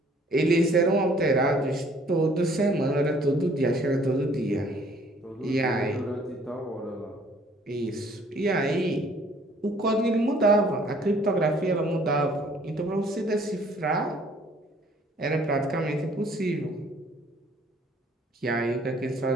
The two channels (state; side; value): normal; both; correlation 0.58